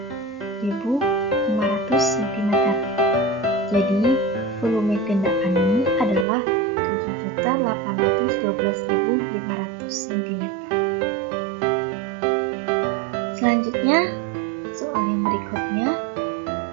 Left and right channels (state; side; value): drops out; left; at 6.2 s